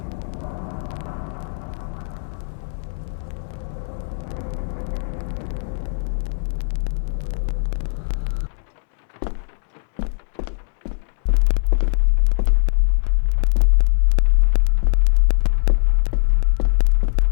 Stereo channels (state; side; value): silent; right; digital silence